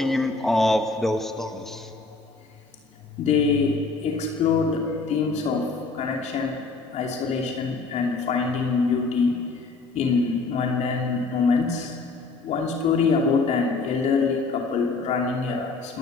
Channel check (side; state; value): right; quieter; 3.9 dB